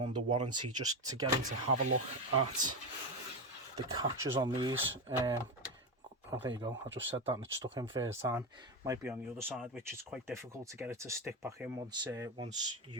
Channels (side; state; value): both; normal; correlation 0.15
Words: warranty, just to get him to have a look at the catches on these. Oh, there you go. I just said that and it stuck in first time. Might be on the other side, which is quite difficult to get it to stick back in once